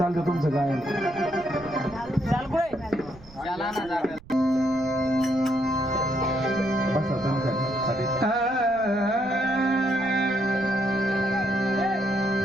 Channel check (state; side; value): noise; right; rumble, 22 dB below the sound